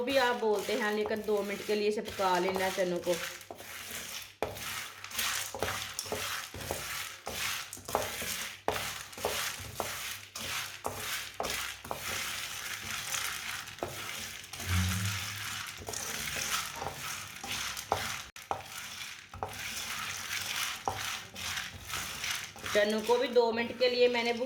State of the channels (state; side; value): identical; both; correlation 1.00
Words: भी आप बोलते हैं, लेकिन 2 मिनट के लिए इसे पका लेना है चनों को। चनों को भी 2 मिनट के लिए मैंने